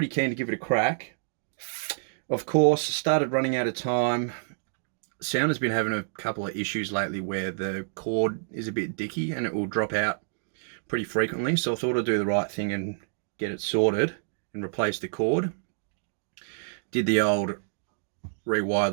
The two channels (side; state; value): left; silent; digital silence